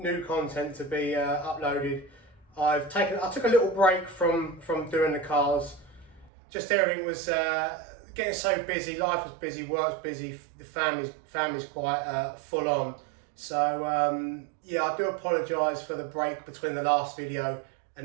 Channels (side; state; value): left; drops out; at 6.3 s